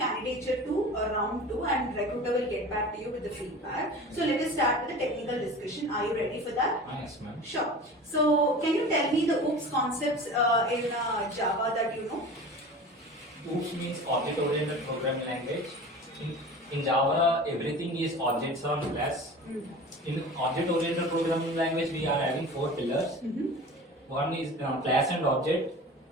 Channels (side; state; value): both; normal; correlation 0.36